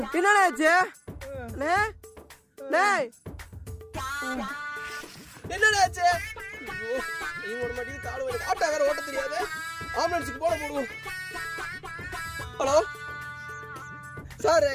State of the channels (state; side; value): identical; both; correlation 1.00